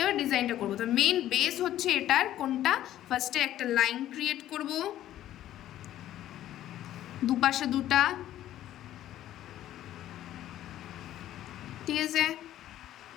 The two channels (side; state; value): right; quieter; 12.8 dB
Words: ডিজাইনটা করব। তো মেন বেস হচ্ছে এটার কোনটা, ফার্স্টে একটা লাইন ক্রিয়েট করব, দুপাশে দুটা। ঠিক আছে,